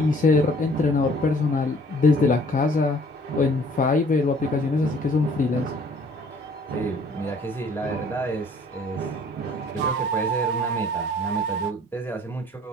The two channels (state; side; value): normal; both; correlation 0.55